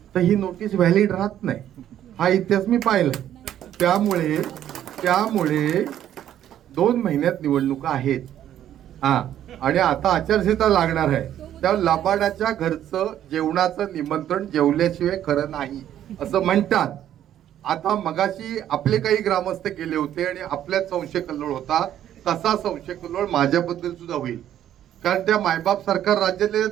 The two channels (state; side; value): quieter; left; 11.2 dB